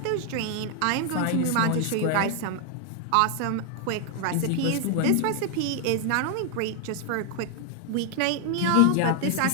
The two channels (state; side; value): different; both; correlation 0.00